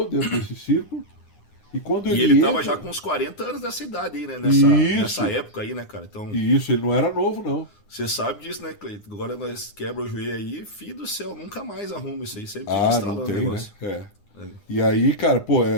dentro desse círculo. E quando ele tava já com uns 40 anos dessa idade aí, né? Nessa época aí, né, cara? Então, isso, ele não era novo, não. Você sabe disso, né, Cleiton? Agora nós quebra o joelho aí, filho do céu, nunca mais arruma isso aí. Sempre fica estralando o negócio. Né? E aí, cara, pô,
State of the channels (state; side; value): late; right; 9.7 ms